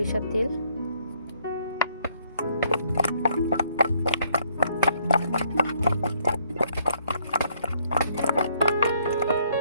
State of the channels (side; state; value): both; inverted; correlation -0.67